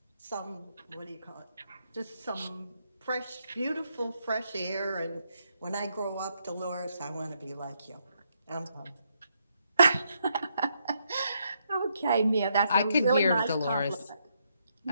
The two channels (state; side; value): inverted; both; correlation -0.77